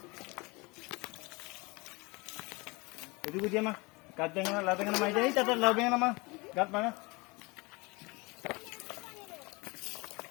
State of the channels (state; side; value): quieter; right; 26.0 dB